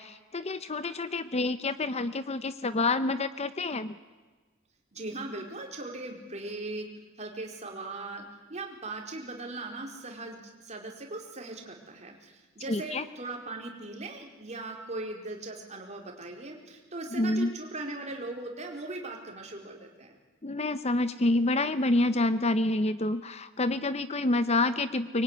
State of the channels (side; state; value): both; normal; correlation 0.46